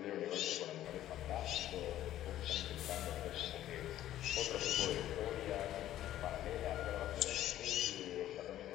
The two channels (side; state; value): right; quieter; 12.9 dB